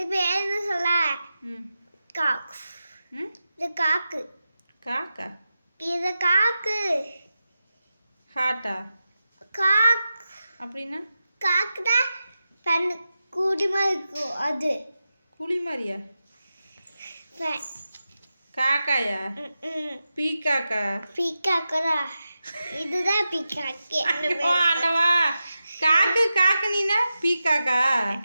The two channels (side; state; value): both; inverted; correlation -0.91